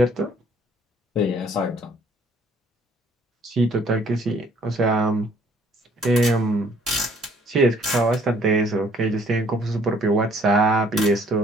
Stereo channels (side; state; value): both; normal; correlation 0.60